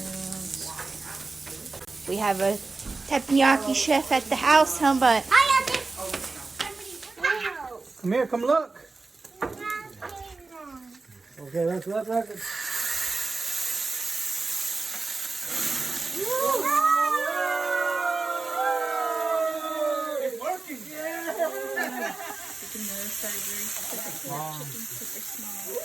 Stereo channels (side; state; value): left; quieter; 3.7 dB